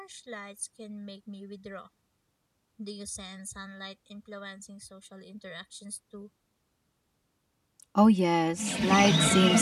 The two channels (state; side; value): identical; both; correlation 1.00